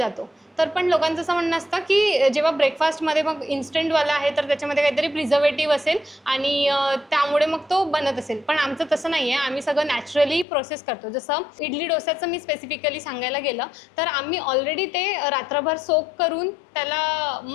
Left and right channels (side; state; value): right; drops out; at 10.5 s